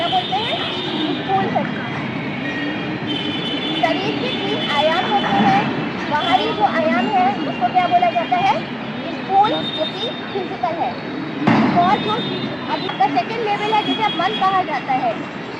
बोलते हैं? स्थूल शरीर। शरीर के 3 आयाम होते हैं। बाहरी जो आयाम है उसको क्या बोला जाता है? स्थूल, जो कि फिजिकल है। और जो अब इसका सेकंड लेवल है जिसे मन कहा जाता है।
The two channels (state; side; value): identical; both; correlation 1.00